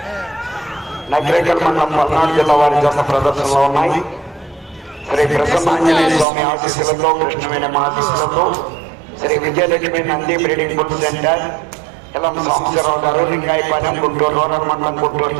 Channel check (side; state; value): left; drops out; at 6.2 s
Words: నగరేకల్ మండలం పల్నాడు జిల్లా వారి జత ప్రదర్శనలో ఉన్నాయి. శ్రీ ప్రసన్నాంజనేయ స్వామి ఆశీస్సులతో, కృష్ణవేణి ఆశీస్సులతో, Shri Vijayalakshmi Nandi breeding bull centre, Elam Sambasivarao గారు, లింగాయపాలెం, గుంటూరు రూరల్ మండలం, గుంటూరు